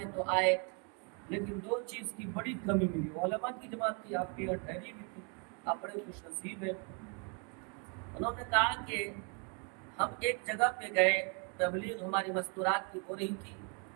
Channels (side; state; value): left; quieter; 36.4 dB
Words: تو آئے لیکن دو چیز کی بڑی کمی ملی، علماء کی جماعت تھی، آپ کی یہاں ٹھہری بھی تھی، آپ بڑے خوش نصیب ہیں۔ انہوں نے کہا کہ ہم ایک جگہ پہ گئے، تبلیغ ہماری مستورات کی ہو رہی تھی،